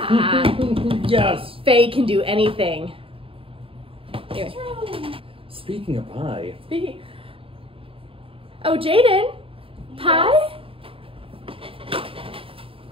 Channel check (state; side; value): late; left; 0.27 ms